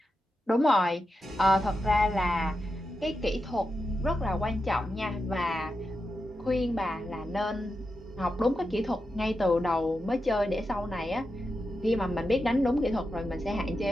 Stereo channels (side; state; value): both; normal; correlation 0.88